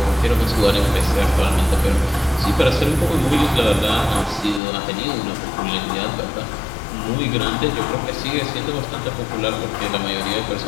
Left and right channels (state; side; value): drops out; right; at 4.6 s